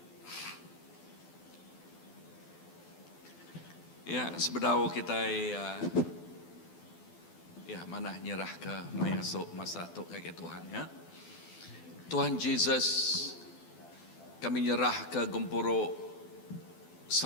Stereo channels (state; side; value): late; right; 12 ms